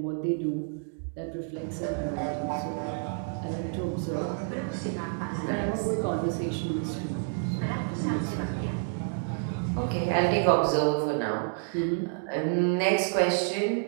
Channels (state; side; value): silent; left; 58 dB below the other